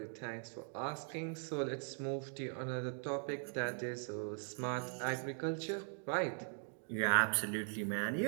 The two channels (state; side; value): silent; left; 51 dB below the other